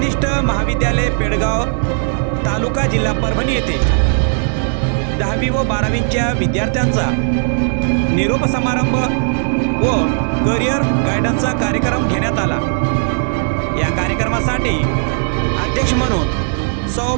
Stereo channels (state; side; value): silent; left; digital silence